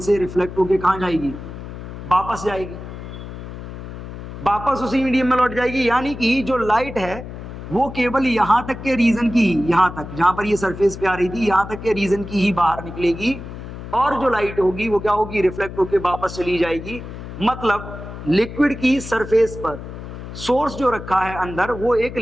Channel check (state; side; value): noise; left; hum, 11 dB below the sound